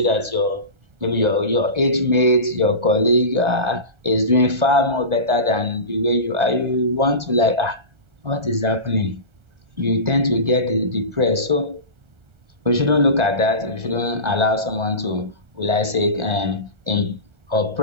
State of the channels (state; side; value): late; left; 1.3 ms